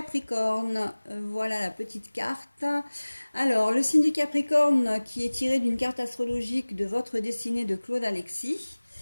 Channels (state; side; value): inverted; both; correlation -1.00